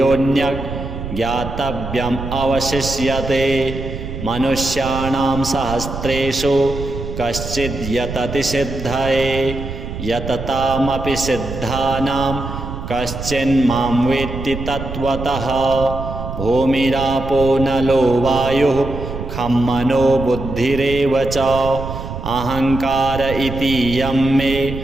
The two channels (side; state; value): right; noise; rumble, 8 dB below the sound